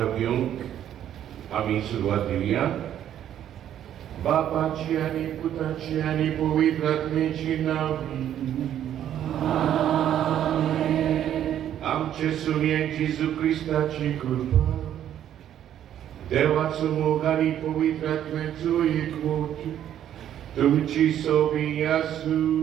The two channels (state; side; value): quieter; left; 10.7 dB